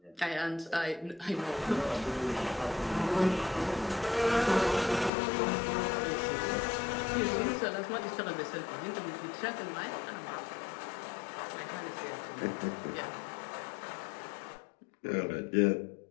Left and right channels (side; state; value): right; drops out; at 5.1 s